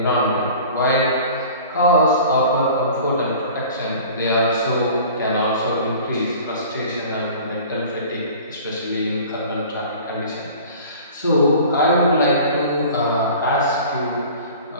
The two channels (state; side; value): inverted; both; correlation -0.43